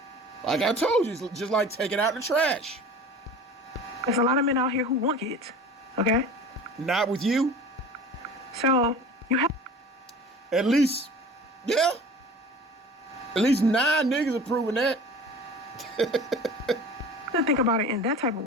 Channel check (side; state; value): both; normal; correlation 0.40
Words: Like I told you, it's just like taking out the trash. There's a lot of men out here who want kids, okay? Not with you. So, you have... At least, yeah. At least 9 niggas are proving that. to think about it in that type of